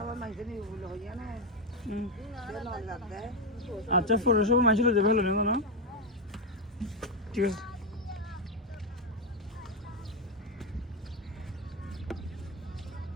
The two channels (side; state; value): both; normal; correlation 0.07